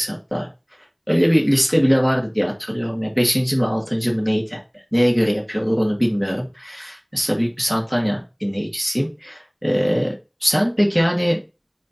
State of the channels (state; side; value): identical; both; correlation 1.00